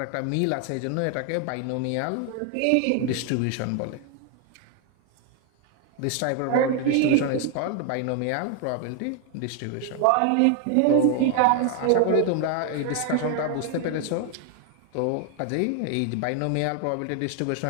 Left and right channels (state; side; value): different; both; correlation 0.00